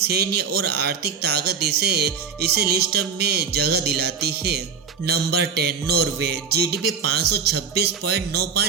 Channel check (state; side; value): quieter; left; 6.1 dB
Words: और आर्थिक ताकत इसे लिस्ट में जगह दिलाती है। नंबर 10 नॉर्वे, जीडीपी